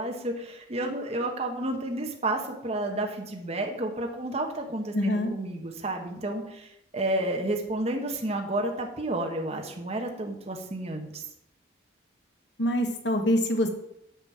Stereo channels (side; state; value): both; normal; correlation 0.38